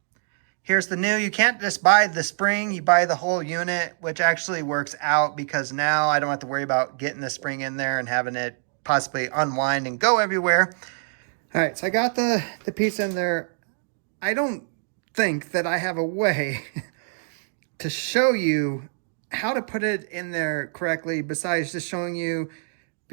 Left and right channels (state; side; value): silent; left; 56 dB below the other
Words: here's the new. You can't just buy the spring, you buy the whole unit, which actually works out because now I don't have to worry about getting the spring in there and having it possibly unwind and go everywhere. All right, so I got the piece in there. I don't think that I have a way to show you how to put it in there correctly besides just showing you